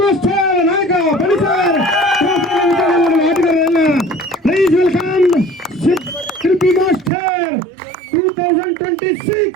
ನಾಯಕ ಬಣಿಸರ್ ಆಟಗಾರರೆಲ್ಲ please welcome Shilpi master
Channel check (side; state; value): left; drops out; at 7.1 s